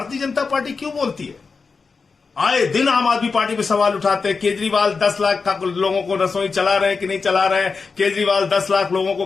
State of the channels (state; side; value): quieter; right; 4.8 dB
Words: जनता पार्टी क्यों बोलती है? आए दिन आम आदमी पार्टी पे सवाल उठाते हैं। केजरीवाल 10 लाख लोगों को रसोई चला रहे हैं कि नहीं चला रहे हैं? केजरीवाल 10 लाख लोगों